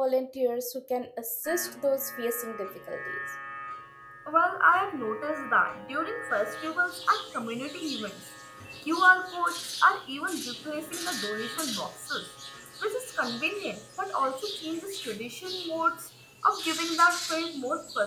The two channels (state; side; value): identical; both; correlation 1.00